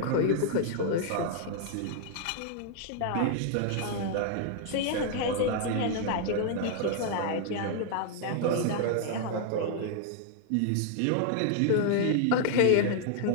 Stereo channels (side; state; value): both; different; correlation 0.00